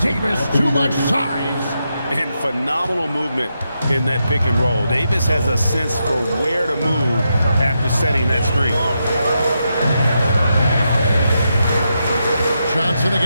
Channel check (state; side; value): inverted; both; correlation -0.84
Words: too much size. And phenomenal movement in that pick and roll. Davis has a sense for where to move after setting that screen. Johnson